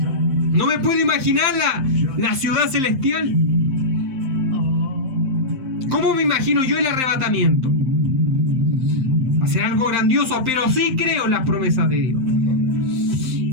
No me puedo imaginar la ciudad celestial. ¿Cómo me imagino yo el arrebatamiento? Va a ser algo grandioso, pero sí creo en las promesas de Dios.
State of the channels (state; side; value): late; left; 7.7 ms